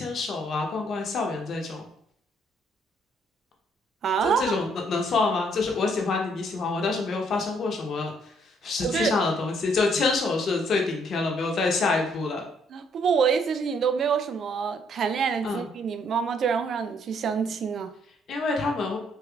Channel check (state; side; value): normal; both; correlation 0.68